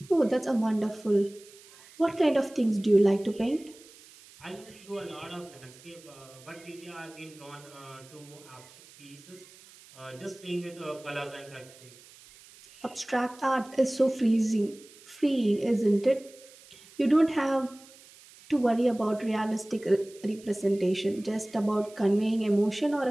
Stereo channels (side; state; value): right; noise; hiss, 23 dB below the sound